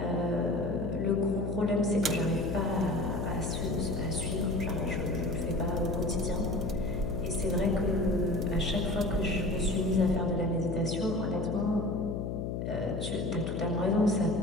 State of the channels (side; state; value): left; noise; hum, 2 dB below the sound